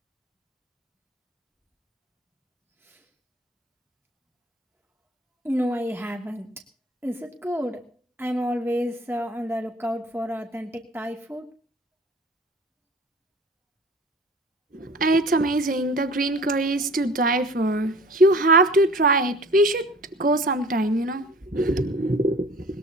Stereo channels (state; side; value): normal; both; correlation 0.46